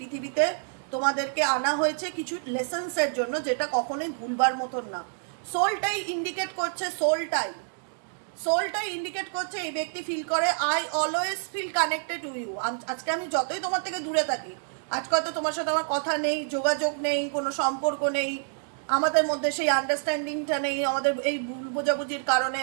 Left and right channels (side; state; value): left; silent; digital silence